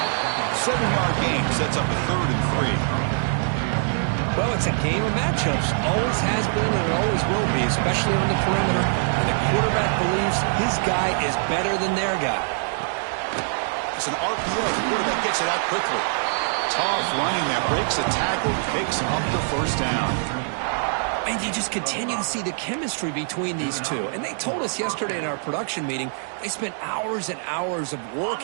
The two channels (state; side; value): silent; left; digital silence